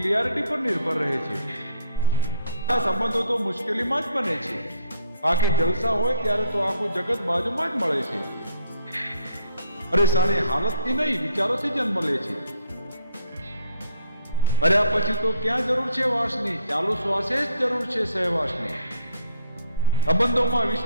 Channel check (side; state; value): both; inverted; correlation -0.65